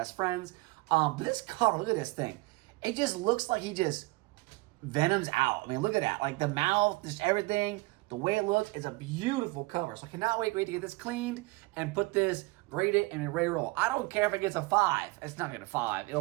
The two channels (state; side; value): quieter; left; 24.1 dB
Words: friends. But this cover, look at this thing. It just looks like he just Venom's out. I mean, look at that. Like the mouth, just everything. The way it looks is a beautiful cover. So I cannot wait to get this cleaned and put this, grade it, and ready to roll. I don't care if it gets a 5. It's not going to 5.